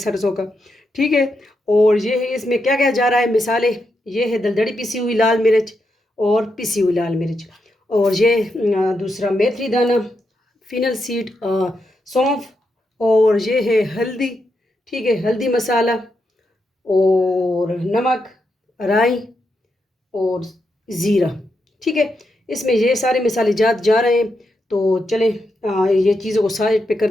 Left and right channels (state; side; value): normal; both; correlation 0.84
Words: का, ठीक है। और ये है, इसमें क्या क्या जा रहा है मिसाले। ये है दलदड़ी पिसी हुई लाल मिर्च और पिसी हुई लाल मिर्च, और ये दूसरा मेथी दाना, फिनल सीड, सौंफ, और ये है हल्दी, ठीक है, हल्दी मसाला और नमक, राई और ज़ीरा, ठीक है। इसमें ये सारे मसाले जात जा रहे हैं। तो चलें ये चीज़ों को साइड पे